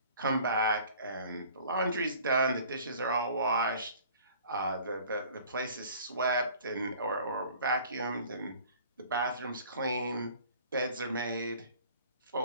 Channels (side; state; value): both; inverted; correlation -0.50